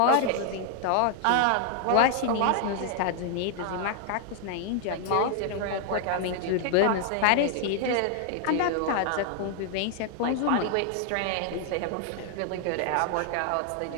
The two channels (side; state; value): both; different; correlation 0.00